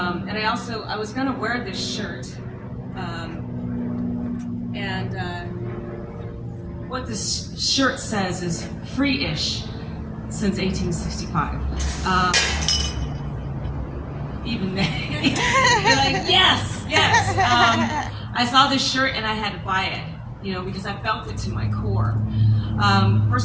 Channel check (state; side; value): identical; both; correlation 1.00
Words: I was going to wear this shirt, what this shirt says is free-ish since 1865. Even then, you're like, yes. I saw this shirt and I had to buy it, because I felt it to my core.